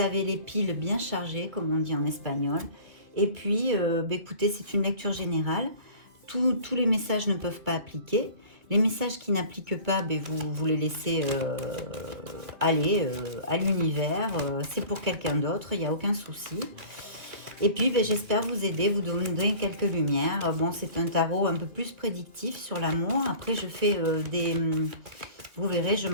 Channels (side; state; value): left; late; 2.3 ms